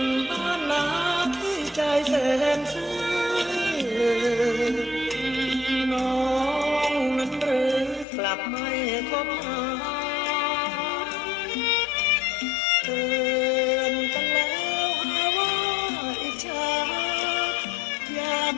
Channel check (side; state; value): right; drops out; at 8.1 s